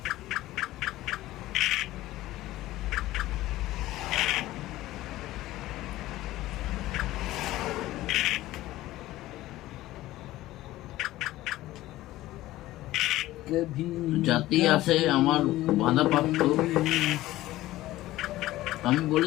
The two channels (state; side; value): quieter; right; 16.3 dB